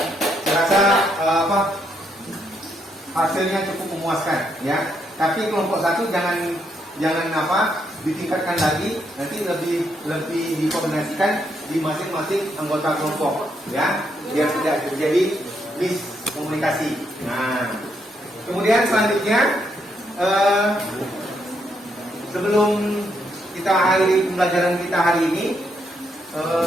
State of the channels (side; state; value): both; normal; correlation 0.77